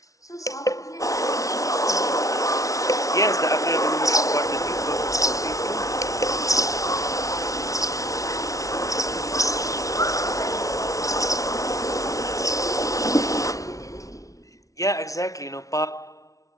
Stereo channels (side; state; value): right; late; 0.17 ms